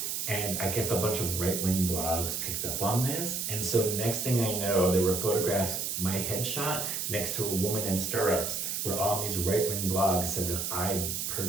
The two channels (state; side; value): noise; right; hiss, 2 dB below the sound